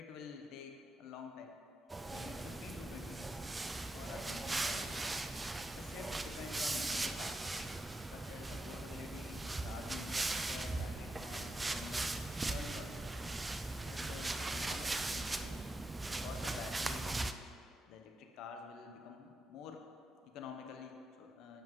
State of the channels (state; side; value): normal; both; correlation 0.87